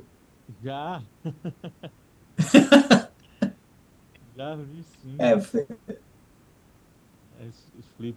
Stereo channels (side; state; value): both; identical; correlation 1.00